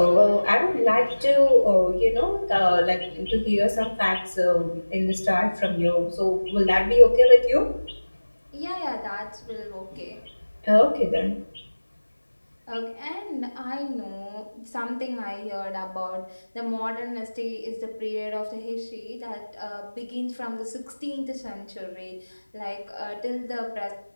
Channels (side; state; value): both; inverted; correlation -1.00